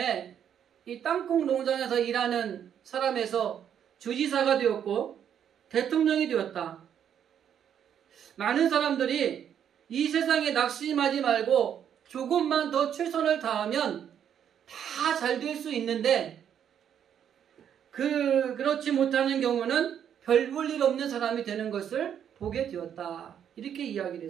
이 땅콩 농장에서 일하는 사람에서 주지사가 되었고 대통령이 되었다. 많은 사람들이 이 세상에 낙심하지 말고 조금만 더 최선을 다하면 다 잘 될 수 있는데 그렇지 못하는 경우는 별 볼 일 없는 사람이 되는 것을 보게 되었다. 이렇게 이야기를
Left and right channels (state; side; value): quieter; left; 9.0 dB